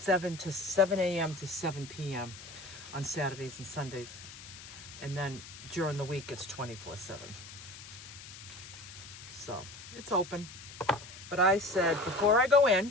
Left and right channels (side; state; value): left; noise; hiss, 15 dB below the sound